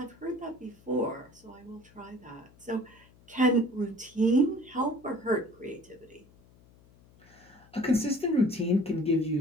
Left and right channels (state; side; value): noise; left; hum, 27 dB below the sound